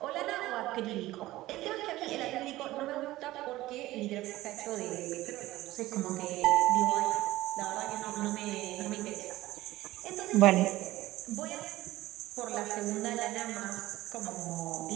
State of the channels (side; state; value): left; quieter; 16.9 dB